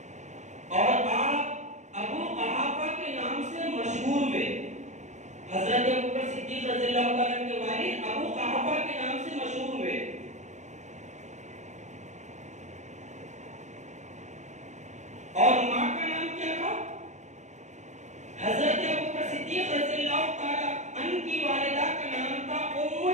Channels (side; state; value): left; late; 0.34 ms